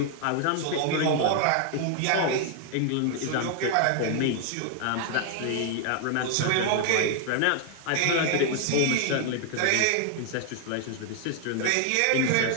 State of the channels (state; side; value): different; both; correlation 0.00